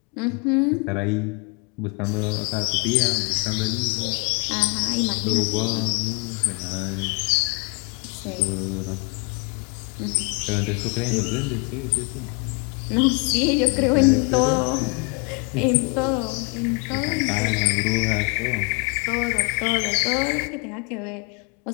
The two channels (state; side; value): quieter; right; 33.1 dB